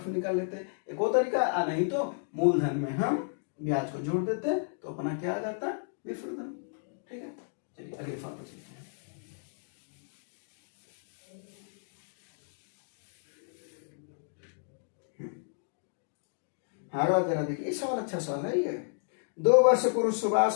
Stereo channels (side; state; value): right; silent; digital silence